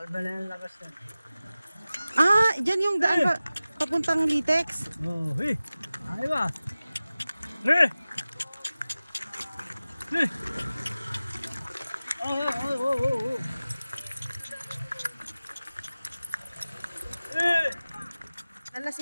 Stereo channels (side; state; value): both; inverted; correlation -0.97